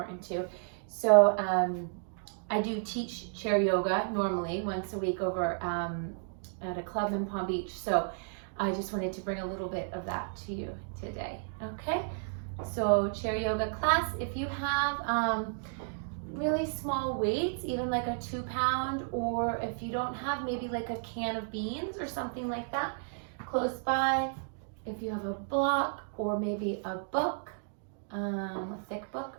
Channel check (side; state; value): left; silent; digital silence